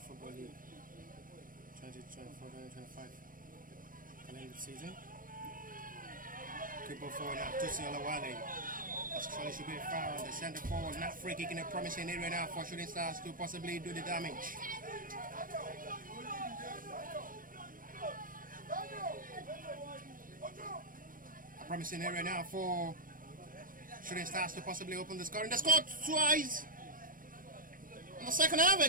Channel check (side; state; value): left; late; 0.40 ms